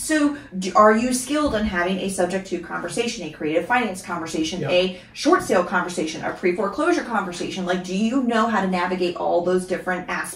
are you skilled in having a subject to conversation, a creative finance conversation, a short sale conversation, a pre-foreclosure conversation? Like, do you know how to navigate all those different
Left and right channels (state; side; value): identical; both; correlation 1.00